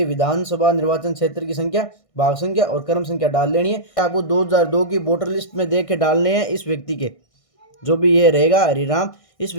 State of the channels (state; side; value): late; right; 1.6 ms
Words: विधानसभा निर्वाचन क्षेत्र की संख्या, भाग संख्या और क्रम संख्या डाल लेनी है। आपको 2002 की वोटर लिस्ट में देख के डालने हैं इस व्यक्ति के, जो भी ये रहेगा हरिराम, इस